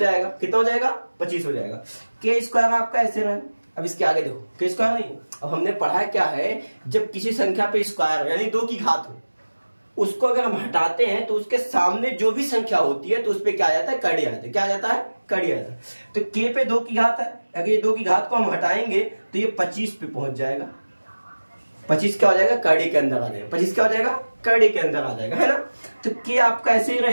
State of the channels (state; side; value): inverted; both; correlation -1.00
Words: कितना हो जाएगा? 25 हो जाएगा। k स्क्वायर आपका ऐसे रहे। अब इसके आगे देखो, k स्क्वायर नहीं, अब हमने पढ़ा क्या है, जब किसी संख्या पे स्क्वायर यानी 2 की घात हो, उसको अगर हम हटाते हैं तो उसके सामने जो भी संख्या होती है तो उस पर क्या आ जाता है? कड़ी आ जाता है। क्या आ जाता है? कड़ी आ जाता है। तो k पे 2 की घात है, अगर ये 2 की घात को हम हटाएंगे तो ये 25 पे पहुंच जाएगा। 25 क्या हो जाएगा? कड़ी के अंदर आ जाएगा। 25 क्या हो जाएगा? कड़ी के अंदर आ जाएगा, है ना। तो k आपका ऐसे ही